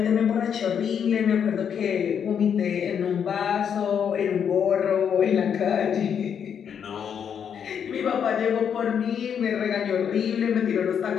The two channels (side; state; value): right; quieter; 7.9 dB